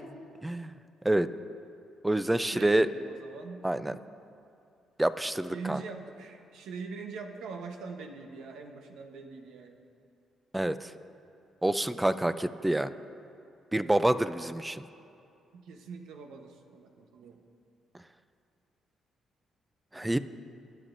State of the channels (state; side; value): normal; both; correlation 0.97